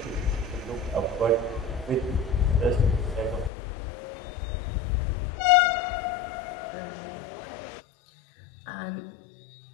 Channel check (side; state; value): right; drops out; at 3.5 s